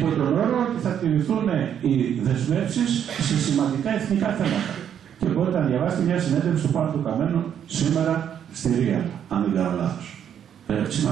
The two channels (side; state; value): left; quieter; 9.1 dB